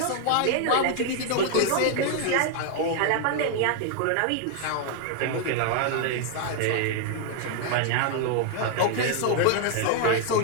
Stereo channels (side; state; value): both; different; correlation 0.00